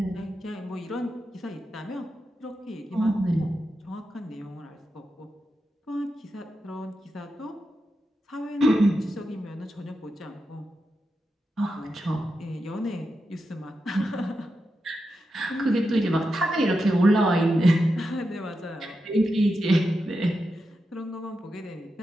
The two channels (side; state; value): both; normal; correlation 0.88